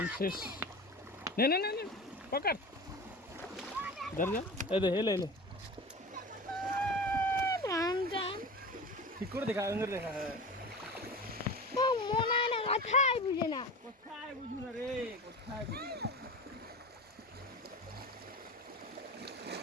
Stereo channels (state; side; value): normal; both; correlation 0.31